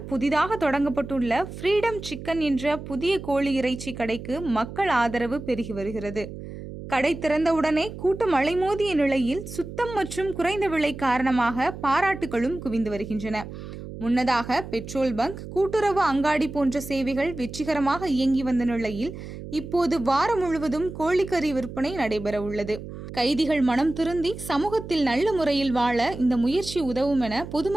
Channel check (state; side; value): noise; right; hum, 11 dB below the sound